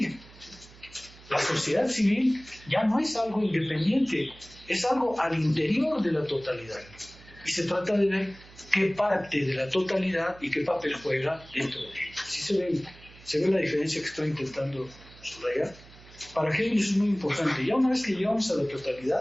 La sociedad civil ya no es algo independiente, es algo al interior de la totalidad. Y se trata de ver qué parte de la totalidad y qué papel juega dentro de ella. ¿Sí se ve la diferencia que estoy intentando subrayar? Para Hegel eso es muy importante. Ya una vez que llegamos a la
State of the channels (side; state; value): right; noise; hum, 22 dB below the sound